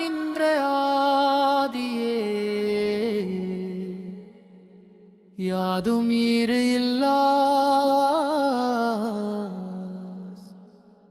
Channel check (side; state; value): both; identical; correlation 1.00